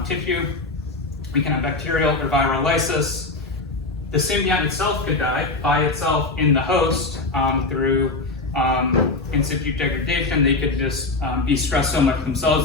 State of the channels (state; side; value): quieter; right; 3.3 dB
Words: tissue. We can have bacterial or viral lysis. The symbiont itself could die by itself in the host through in situ degradation. They could just be stressed so much